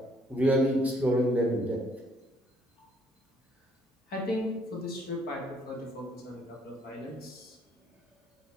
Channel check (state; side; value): normal; both; correlation 0.65